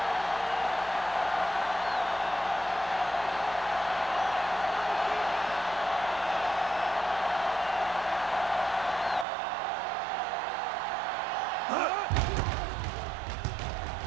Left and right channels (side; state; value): left; drops out; at 9.2 s